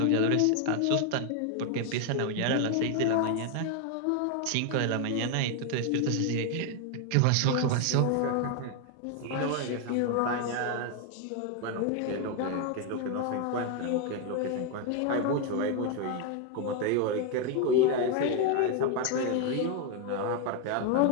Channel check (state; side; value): different; both; correlation 0.01